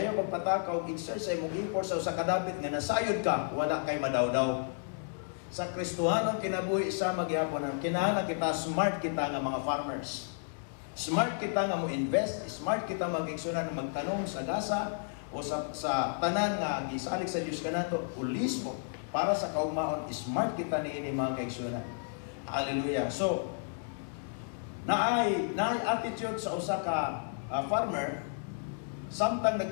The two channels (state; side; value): silent; right; 56 dB below the other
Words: pagpataka og exercise mong effort sa kadapit nga nasayod ka, wala kay madawdaw. Sa Kristohanong kinabuhi isa magyapon ang kinahanglan kita smart kita nga mga farmers. Smart kita nga mo invest, smart kita magigsunan magtanom sa gasa o sa tanan nga gisalig sa Dios kanato pulismo para sa kaugmaon. Smart kita niini mga kaigsunan. Hallelujah. So naay attitude sa usa ka farmer. Samtang